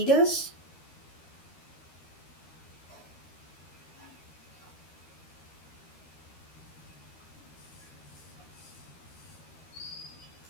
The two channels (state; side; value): late; right; 13 ms